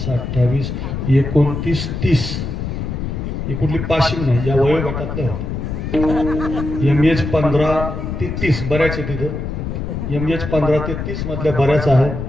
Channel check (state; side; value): noise; left; rumble, 4 dB below the sound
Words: 28 29 30 ही कुठली पाशिंग नाही या वयोगटातल्या होत्या. MH15 ते 30 बऱ्याच आहे तिथं. MH15 ते 30 मधल्या बऱ्याच आहे.